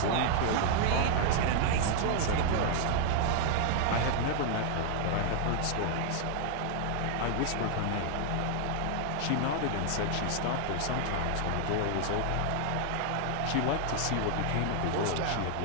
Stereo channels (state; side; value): different; both; correlation 0.00